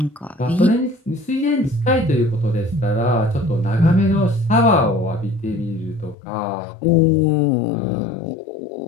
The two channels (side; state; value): right; drops out; at 6.2 s